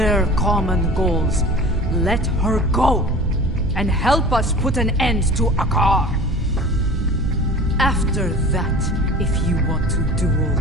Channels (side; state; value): both; normal; correlation 0.40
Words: common goals. Let her go, and help us put an end to Akar. After that, if you want to duel